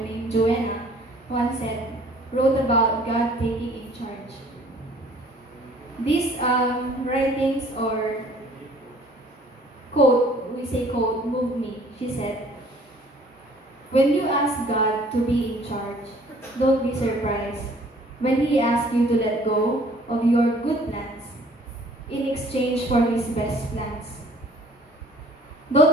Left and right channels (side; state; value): both; normal; correlation 0.55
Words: Joanna, once wrote about God taking in charge. These writings or quote, we say quote, moved me. She said, "When you ask God to be in charge, don't be surprised when He asks you to let go of your good plans in exchange for His best plans.